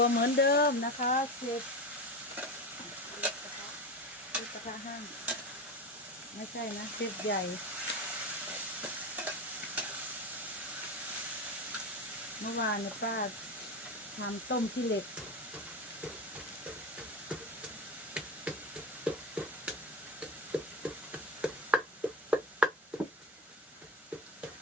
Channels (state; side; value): normal; both; correlation 0.22